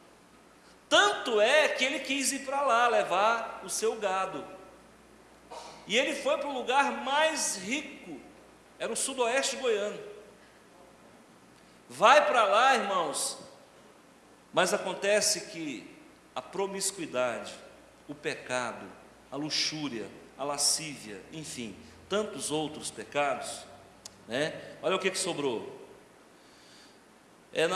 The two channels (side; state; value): both; identical; correlation 1.00